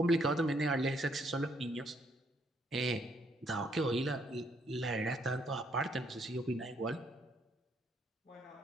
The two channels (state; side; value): normal; both; correlation 0.70